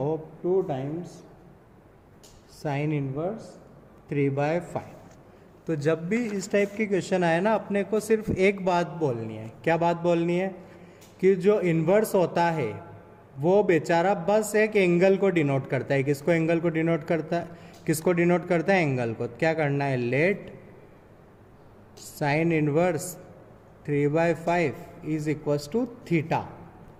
2 times sine inverse 3/5। तो जब भी इस टाइप के क्वेश्चन आए ना, अपने को सिर्फ एक बात बोलनी है। क्या बात बोलनी है? कि जो इन्वर्स होता है वो बेचारा बस एक एंगल को डिनोट करता है। किसको एंगल को डिनोट करता है? किसको डिनोट करता है? एंगल को। क्या करना है? Let sine inverse 3/5 is equals to theta.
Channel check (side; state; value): both; identical; correlation 1.00